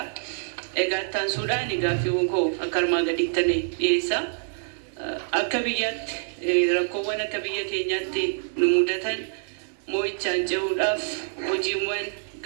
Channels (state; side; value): silent; left; 61 dB below the other